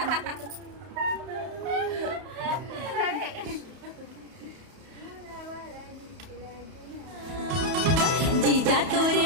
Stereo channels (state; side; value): late; left; 31 ms